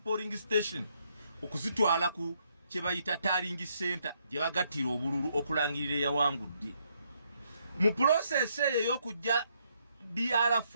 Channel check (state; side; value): inverted; both; correlation -0.74